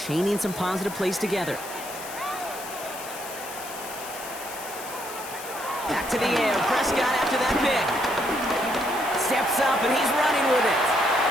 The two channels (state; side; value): noise; left; hiss, 12 dB below the sound